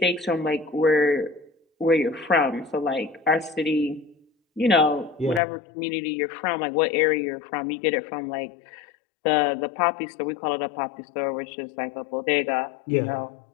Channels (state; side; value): drops out; right; at 5.4 s